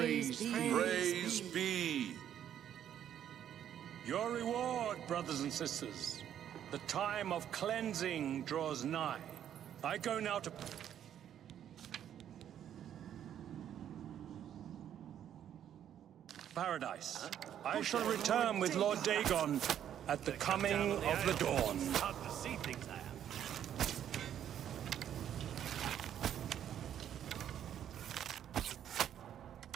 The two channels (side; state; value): left; quieter; 10.1 dB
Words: Praise be. Your reward, brothers and sisters. The time of cleansing draws nigh. I go now to... Paradise. I shall return with Lord Dagon at the coming of the dawn. Hard to see things I have.